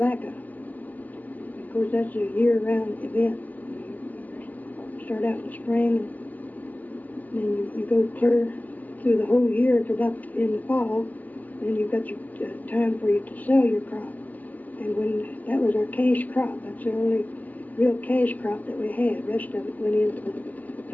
Of course, that's a year-round event. You start out in the spring, and then you go clear through the whole year to about in the fall. Then you've got your time for you to sell your crop. And when that was our cash crop, that's the only real cash crop that we had. The rest of it went into the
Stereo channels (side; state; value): right; late; 0.080 ms